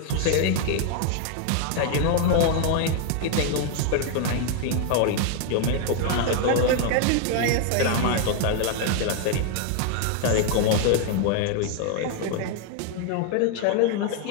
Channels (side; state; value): both; different; correlation 0.00